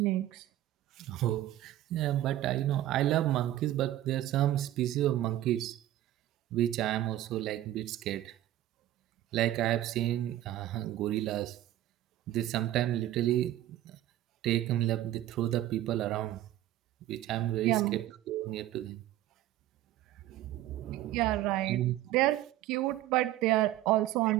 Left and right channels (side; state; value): left; quieter; 13.9 dB